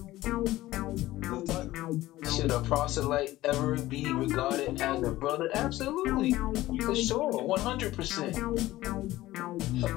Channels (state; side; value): quieter; right; 16.5 dB